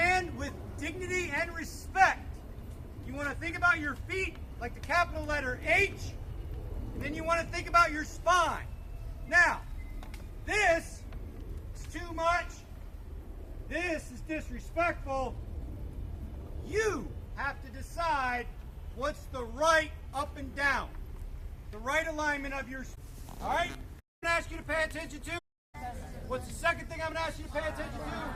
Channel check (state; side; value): identical; both; correlation 1.00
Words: with dignity and respect, you want to think about your feet like the capital letter H, and then you want to think about your spine. Now, this is too much. This is disrespectful. You have to decide what's the right up and down, the right alignment of your spine. All right? I'm going to ask you to pay attention to. What's the second thing I'm going to ask you to pay attention